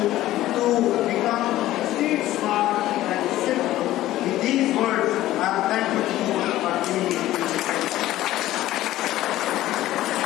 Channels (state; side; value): quieter; right; 14.9 dB